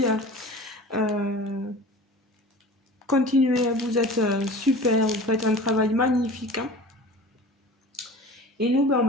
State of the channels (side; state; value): both; normal; correlation 0.39